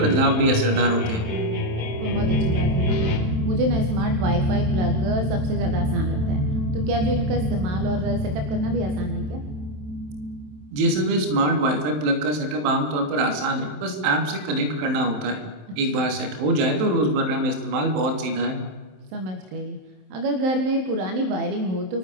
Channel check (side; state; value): left; late; 27 ms